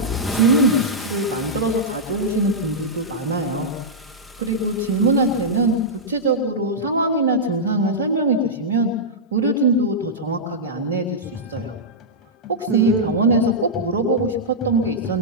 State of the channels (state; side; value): normal; both; correlation -0.10